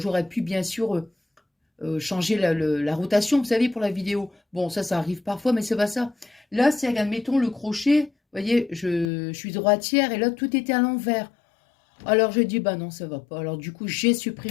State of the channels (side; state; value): right; drops out; at 9.1 s